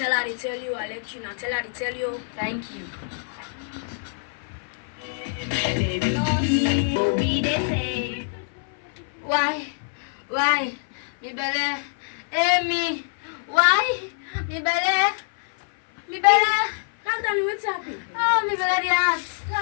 her to tell you. I let you. Now tell her to tell you. Thank you. Why? Me belly. Amy. Why? Me belly. Calm down. What's happening? Oh, me belly the ass.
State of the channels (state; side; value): silent; right; 56 dB below the other